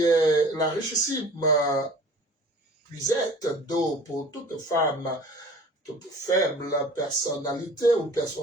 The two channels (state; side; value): normal; both; correlation 0.45